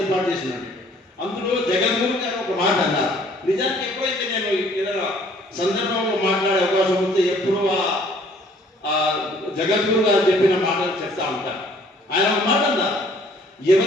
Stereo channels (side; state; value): both; normal; correlation 0.59